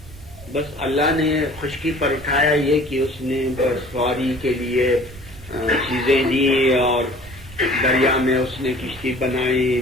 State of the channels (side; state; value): right; noise; rumble, 19 dB below the sound